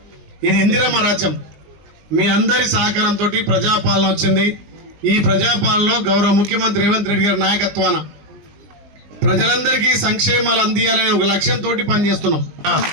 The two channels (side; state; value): left; late; 19 ms